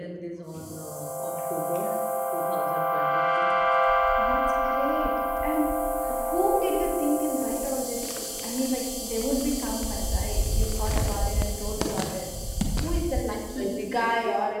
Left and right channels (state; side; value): identical; both; correlation 1.00